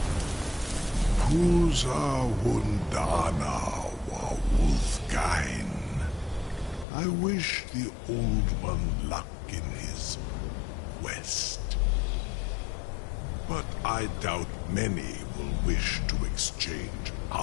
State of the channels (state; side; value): drops out; right; at 6.9 s